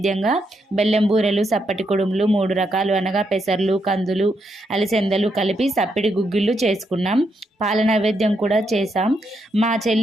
బెల్లం బూరెలు, సప్పటి కుడుములు 3 రకాలు అనగా పెసర్లు, కందులు, అలిసెందలు కలిపి సప్పిడి గుగ్గిళ్ళు చేసుకున్నాం. పాల నైవేద్యం కూడా చేసాం. మా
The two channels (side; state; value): both; normal; correlation 0.80